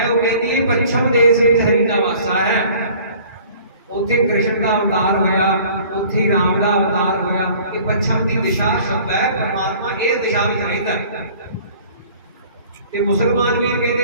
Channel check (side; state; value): both; inverted; correlation -0.50